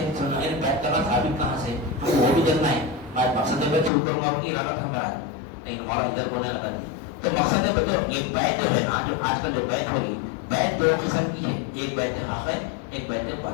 بیت کرنا ثابت کہاں سے؟ ہم کو وہ بھی کرنا ہے۔ آج مقصد بیت سے اوپر ماروں کی ارادہ تھا میرا، لیکن ہمارا ادھر بولنے لگا نہیں۔ تو مقصد بیت یہ بیت جو ہے نا، جو آج کل جو بیت ہو رہی، بیت دو قسم کی ہے، ایک بیت حق ہے، ایک بیت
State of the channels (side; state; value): right; drops out; at 3.9 s